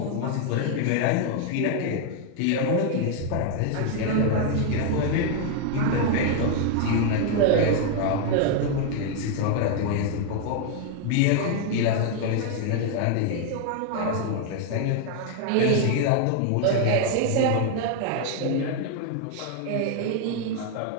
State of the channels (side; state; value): both; different; correlation 0.00